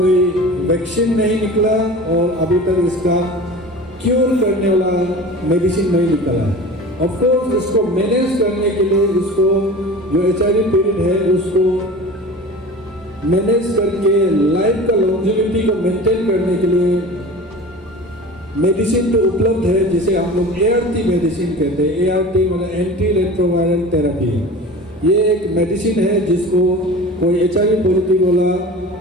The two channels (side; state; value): both; normal; correlation 0.36